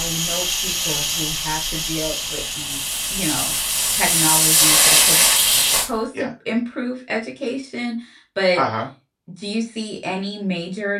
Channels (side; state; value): both; identical; correlation 1.00